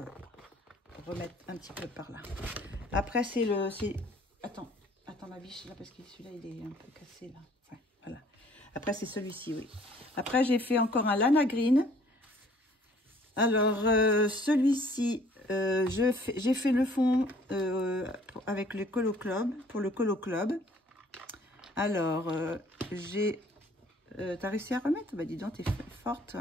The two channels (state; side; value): normal; both; correlation 0.57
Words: remette un petit peu par là. Après attends ma biche là parce que celui-là il est un peu cassé là. Ouais, voilà. Après, c'est celui-ci, oui. Après, j'ai fait encore un Lana Green. Alors, celui-ci, j'ai fait le fond avec le Colo Club, pour le Colo Club. Alors, t'as réussi à remettre? Bah, dis donc, t'es forte.